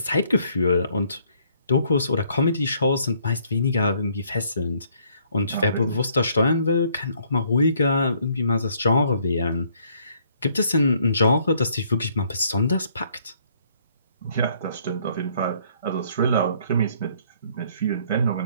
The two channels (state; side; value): inverted; both; correlation -0.65